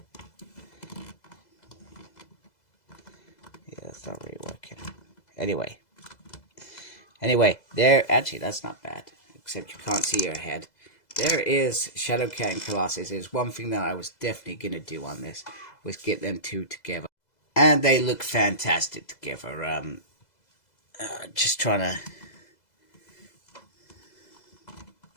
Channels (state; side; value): late; right; 2.0 ms